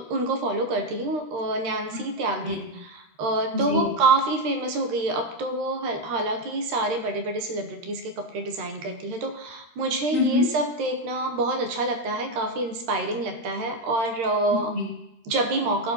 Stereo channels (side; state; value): left; late; 13 ms